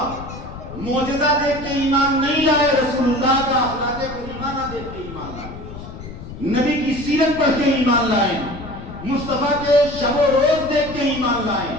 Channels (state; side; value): noise; left; rumble, 12 dB below the sound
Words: معجزہ دیکھ کے ایمان نہیں لائے، رسول اللہ کا اخلاق کریمہ دیکھ کے ایمان لائے، نبی کی سیرت پڑھ کے ایمان لائے، مصطفیٰ کے شب و روز دیکھ کے ایمان لائے۔